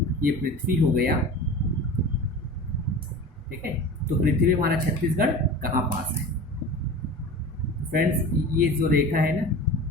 ये पृथ्वी हो गया, ठीक है। तो पृथ्वी में हमारा छत्तीसगढ़ कहाँ पास है। फ्रेंड्स, ये जो रेखा है ना,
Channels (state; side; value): normal; both; correlation 0.35